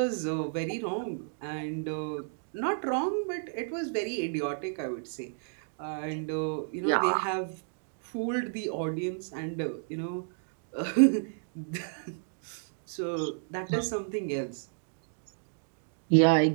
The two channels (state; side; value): silent; left; digital silence